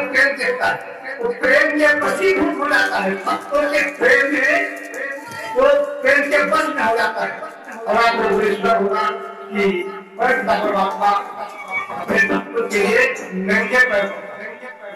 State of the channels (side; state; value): both; identical; correlation 1.00